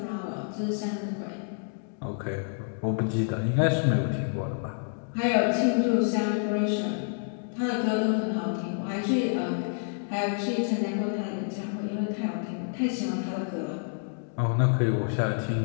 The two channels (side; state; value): right; silent; digital silence